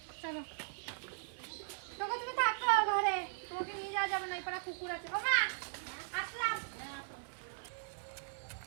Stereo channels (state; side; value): silent; left; 52 dB below the other